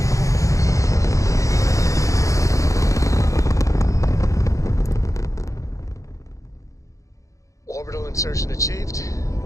Orbital insertion achieved.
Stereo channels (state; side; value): late; right; 0.15 ms